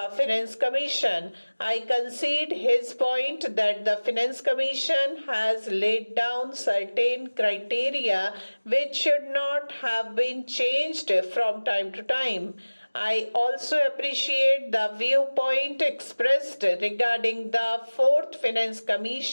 Finance Commission. I concede his point that the Finance Commission has laid down certain criteria which should not have been changed from time to time. I also appreciate the viewpoint expressed regarding the Fourth Finance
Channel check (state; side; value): inverted; both; correlation -1.00